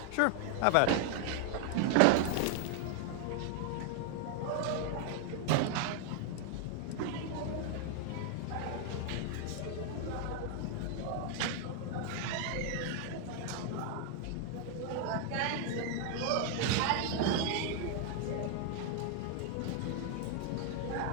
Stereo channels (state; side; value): different; both; correlation 0.00